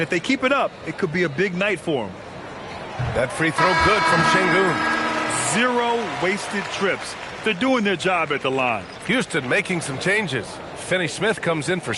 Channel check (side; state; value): both; identical; correlation 1.00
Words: if they keep it up, it could be a big night for them. That free throw good from Şengün. 0 wasted trips. They're doing their job at the line. Houston making some changes. Finney Smith comes in for